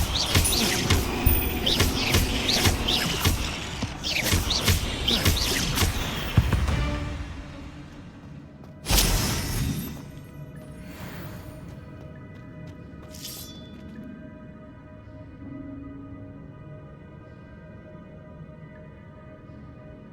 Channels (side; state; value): both; identical; correlation 1.00